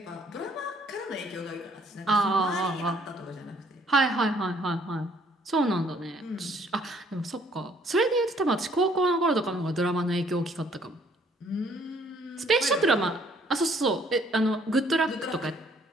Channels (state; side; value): normal; both; correlation 0.63